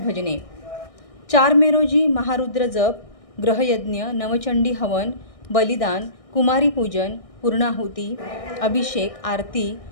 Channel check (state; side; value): late; right; 1.6 ms